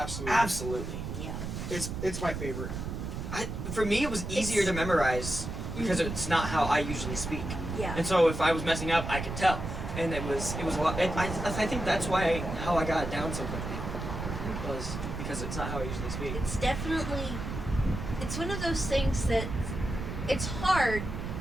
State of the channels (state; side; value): noise; right; rumble, 5 dB below the sound